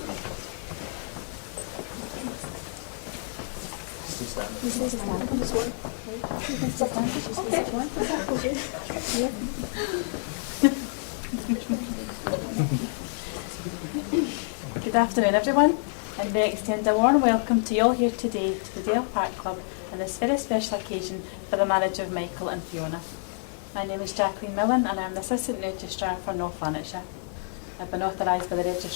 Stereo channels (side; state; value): right; silent; 55 dB below the other